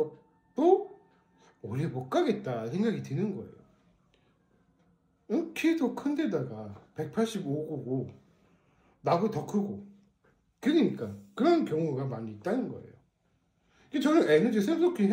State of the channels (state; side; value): identical; both; correlation 1.00